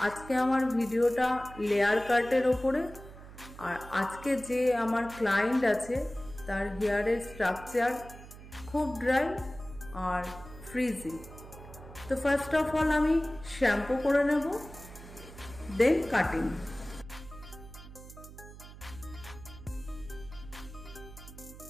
आज के आमार भिडियोटा लेयर काटेर ओपरे और आज के जे आमार क्लाइंट आछे तार हेयारेर स्ट्राक्चार खूब ड्राई और फ्रिजी। तो फार्स्ट अफ अल आमी शैम्पू करे नेब देन काटिंग।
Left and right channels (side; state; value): right; noise; hum, 16 dB below the sound